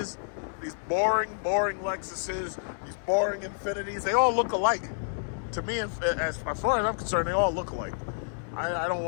these boring Lexuses, these boring Infinitis, they all look alike. To me, as far as I'm concerned, they all look alike. I don't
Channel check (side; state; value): right; silent; digital silence